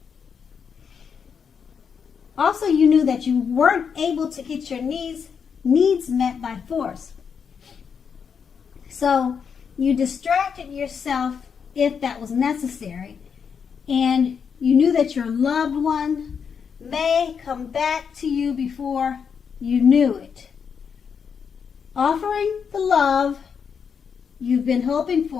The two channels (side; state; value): right; quieter; 6.6 dB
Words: Also, you knew that you weren't able to get your needs met by force. So you distracted yourself if that was necessary, and you knew that your loved one may come back to you before you knew it, offering the love you've been hoping